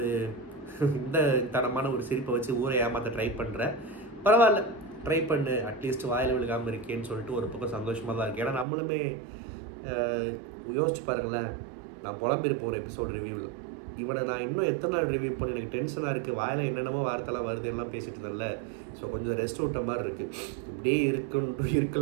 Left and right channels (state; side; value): drops out; left; at 8.7 s